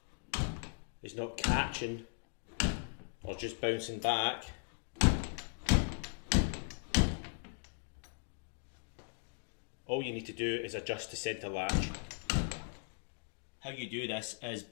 is not catching or just bouncing back, all you need to do is adjust the centre latch. How you do this is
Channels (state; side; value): silent; right; digital silence